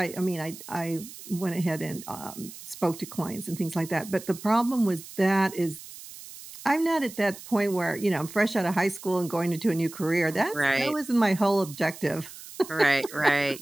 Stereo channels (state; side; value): noise; right; hiss, 15 dB below the sound